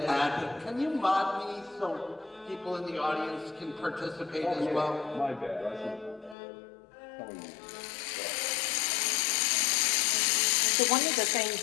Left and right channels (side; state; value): right; drops out; at 6.4 s